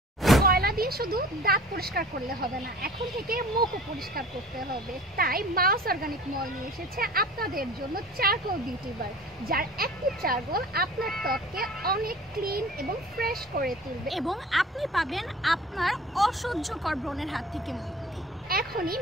কয়লা দিয়ে শুধু দাঁত পরিষ্কার করলে হবে না, এখন থেকে মুখও পরিষ্কার করতে হবে। তাই মাউস অর্গানিক মল নিয়ে এসেছে আপনাদের জন্য চারকোল বিউটি বার, যার অ্যাক্টিভ চারকোল আপনার ত্বককে অনেক ক্লিন এবং ফ্রেশ করে তুলবে এবং আপনি পাবেন আপনার অসহ্যকর ব্রণের হাত থেকে মুক্তি। এখনই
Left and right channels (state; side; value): normal; both; correlation 0.44